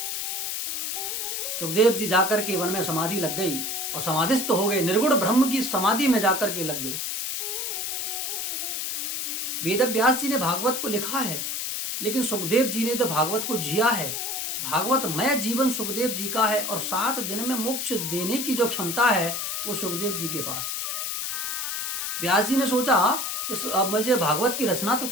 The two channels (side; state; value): left; noise; hiss, 2 dB below the sound